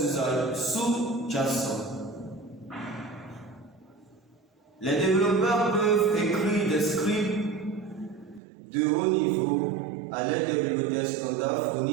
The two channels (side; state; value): left; drops out; at 8.4 s